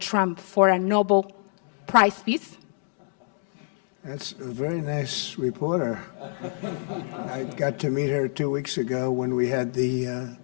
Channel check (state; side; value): silent; right; digital silence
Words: Trump for a Nobel Prize Peace? That's a very nice reporter. I got to meet her 2 weeks ago when we had the